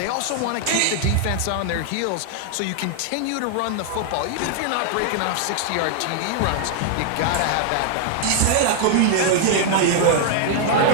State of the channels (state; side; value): different; both; correlation 0.00